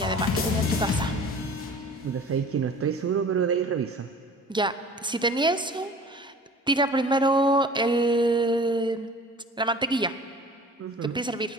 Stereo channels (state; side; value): normal; both; correlation 0.44